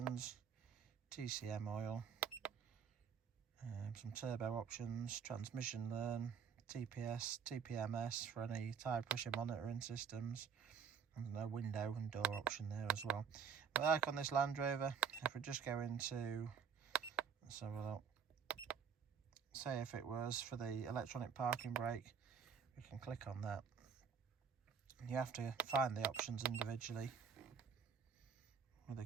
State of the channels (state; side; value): quieter; left; 6.8 dB